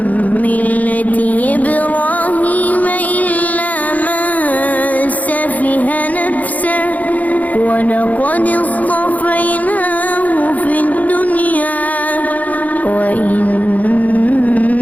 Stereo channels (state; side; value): late; right; 0.076 ms